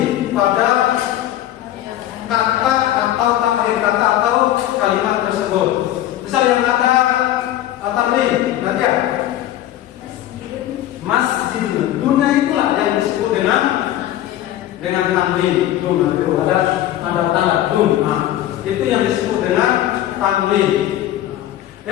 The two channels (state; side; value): quieter; right; 13.1 dB